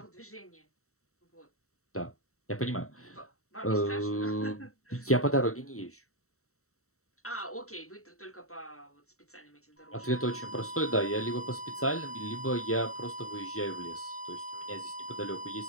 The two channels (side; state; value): right; late; 0.64 ms